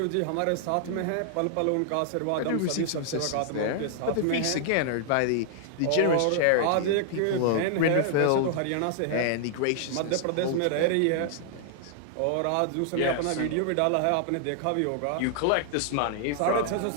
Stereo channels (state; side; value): different; both; correlation -0.01